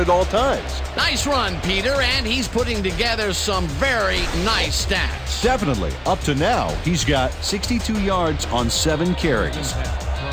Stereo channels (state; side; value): identical; both; correlation 1.00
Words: at all times. Nice run, Peter, and he's putting together some very nice stats. Definitely. Up to now, he's got 62 yards on 7 carries. From